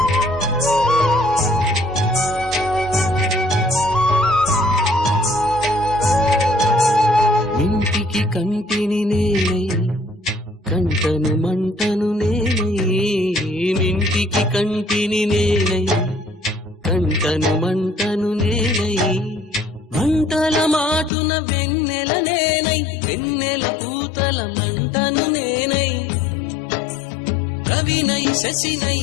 ఇంటికి కంటిని నేనై, కంటను మంటను నేనై. ఇంటికి కంటిని నేనై, కంటను మంటను నేనై. మంటల మాటున వెన్నెల నేనై, వెన్నెల పూతల మంటను నేనై. రవినై శశినై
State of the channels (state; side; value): drops out; right; at 21.1 s